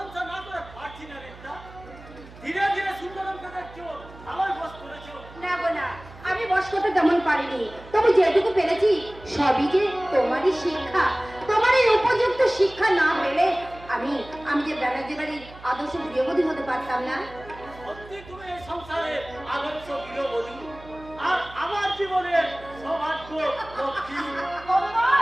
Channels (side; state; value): right; noise; hum, 19 dB below the sound